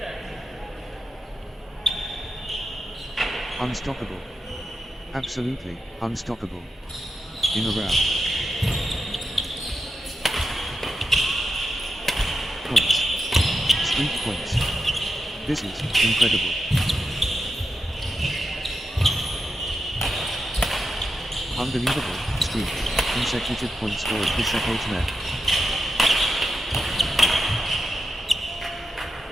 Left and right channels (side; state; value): both; normal; correlation 0.87